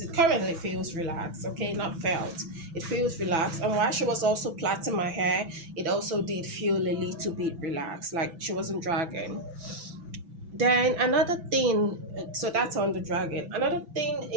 It currently feels relaxed. Okay, not felt. It feels relaxed. And while she was also plaiting my hair, it also did feel a little bit relaxed, like she wasn't dragging. Then another thing, so that's on the dragon. Another thing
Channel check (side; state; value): left; late; 6.0 ms